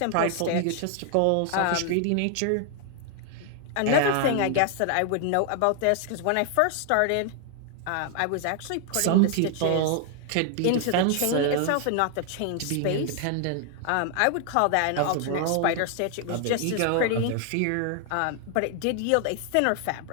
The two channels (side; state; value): both; different; correlation 0.00